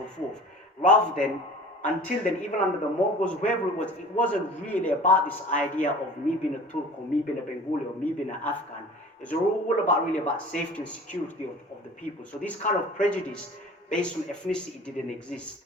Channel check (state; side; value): normal; both; correlation 0.43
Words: forth, rather than, until then, even under the Mongols, whoever it wasn't really about this idea of me being a Turk or me being a Bengali or me being an Afghan. It's all about safety and security of the people. So this kind of prejudice based on ethnicity didn't